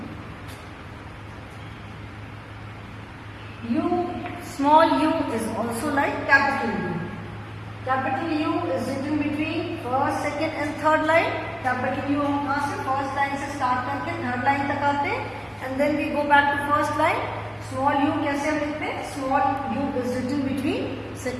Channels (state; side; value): identical; both; correlation 1.00